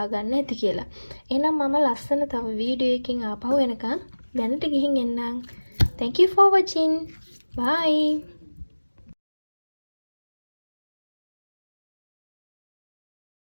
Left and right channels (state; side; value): inverted; both; correlation -1.00